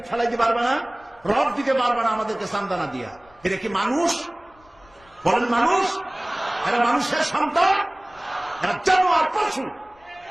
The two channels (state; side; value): noise; left; rumble, 29 dB below the sound